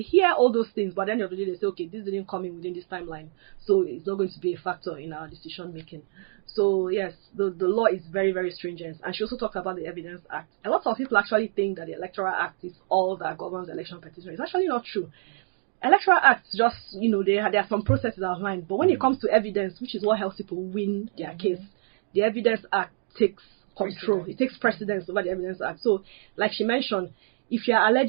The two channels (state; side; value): silent; left; 60 dB below the other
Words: hear all those things, but at the end of the day, they say, okay, this didn't come in within this timeline, so it's not going to be a factor in our decision making. So yes, the law is very, very stringent. And she also talked about the Evidence Act. A lot of people actually think that the Electoral Act is all that governs election petition. It's actually not true. Electoral Acts just, there are some processes outlined, but when it comes to evidence, which is what helps people win their case, the Evidence Act takes control. It takes precedence over the Evidence Act. So, like she mentioned, if you are